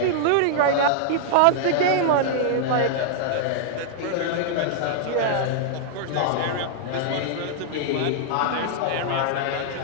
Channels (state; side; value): different; both; correlation -0.01